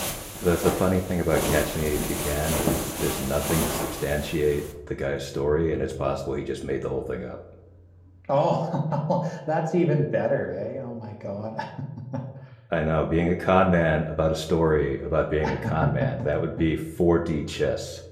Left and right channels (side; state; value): both; identical; correlation 1.00